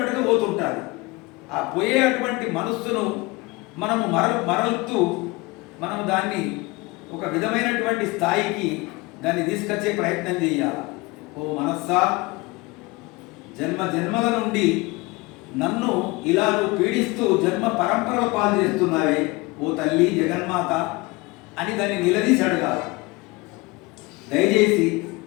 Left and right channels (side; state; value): right; quieter; 23.9 dB